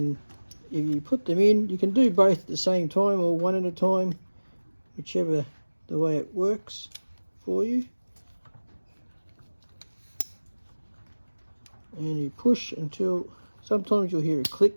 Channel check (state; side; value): inverted; both; correlation -1.00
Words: if you put them in, you can do both at the same time or one at a time, whichever the way it works for you. And you push until sometimes you'll hear a